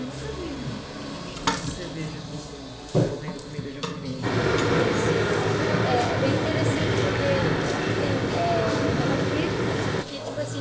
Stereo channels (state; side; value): identical; both; correlation 1.00